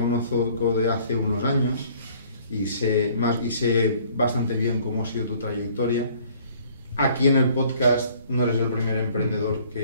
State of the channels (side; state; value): both; inverted; correlation -0.57